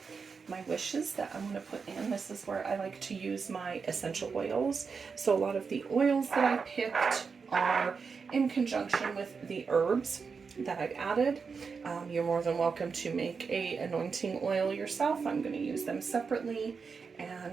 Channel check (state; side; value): quieter; left; 5.3 dB